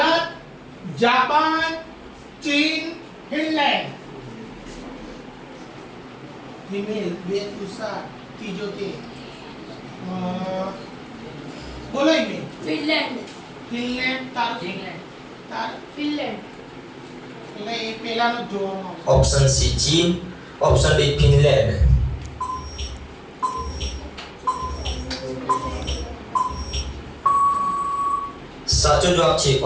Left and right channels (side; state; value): both; identical; correlation 1.00